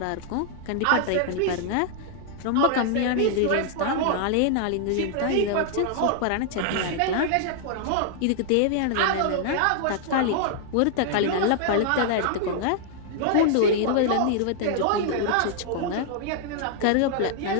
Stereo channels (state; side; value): different; both; correlation -0.01